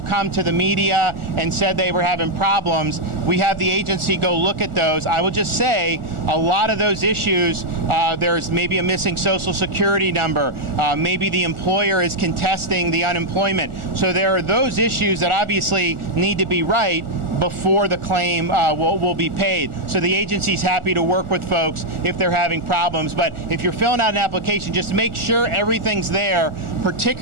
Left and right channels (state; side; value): late; left; 1.4 ms